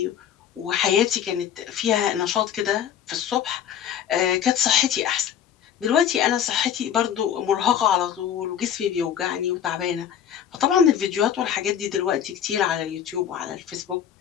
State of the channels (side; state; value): right; quieter; 9.3 dB